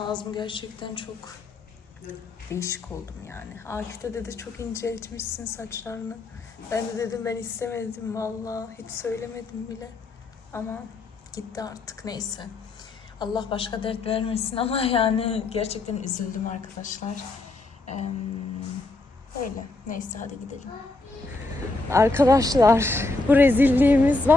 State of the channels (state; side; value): quieter; right; 3.3 dB